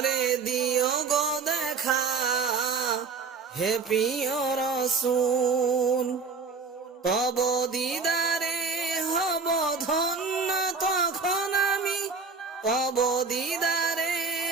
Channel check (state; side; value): quieter; left; 4.8 dB